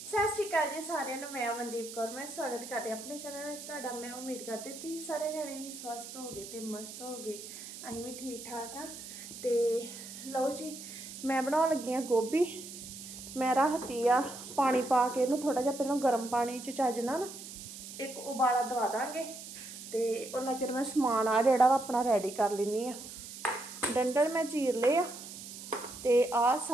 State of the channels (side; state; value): right; noise; hiss, 12 dB below the sound